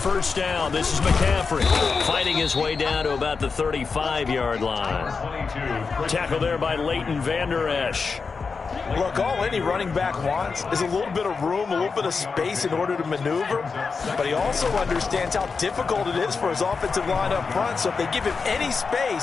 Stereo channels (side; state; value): right; quieter; 4.9 dB